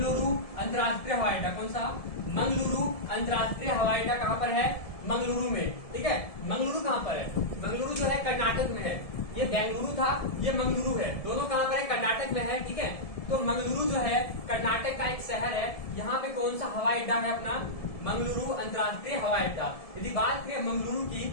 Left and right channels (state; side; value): late; right; 1.7 ms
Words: अंतर्राष्ट्रीय हवाई अड्डा। कौन सा? मंगलुरु अंतर्राष्ट्रीय हवाई अड्डा कहाँ पर है? मंगलुरु में, ठीक है। मंगलुरु कहाँ पर है? मंगलुरु जो है कर्नाटक में है। ये बेंगलुरु था, ये मंगलुरु है। दोनों कहाँ पर है? कर्नाटक में है, ठीक है। तो मंगलुरु जो है कर्नाटक का एक शहर है। यहाँ पे कौन सा हवाई अड्डा है अपना? मंगलुरु अंतर्राष्ट्रीय हवाई अड्डा। यदि बात करें मंगलुरु की,